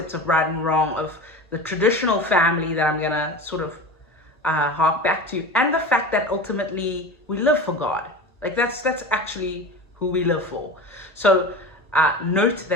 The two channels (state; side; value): normal; both; correlation 0.30